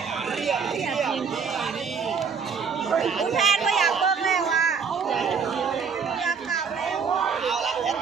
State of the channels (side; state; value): left; quieter; 6.0 dB